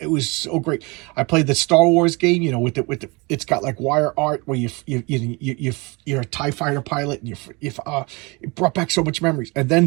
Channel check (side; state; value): left; quieter; 27.0 dB